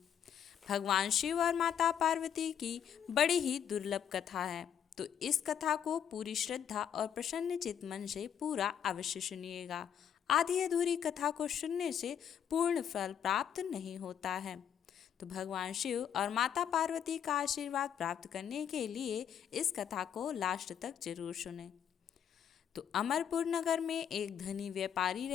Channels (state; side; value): quieter; right; 8.8 dB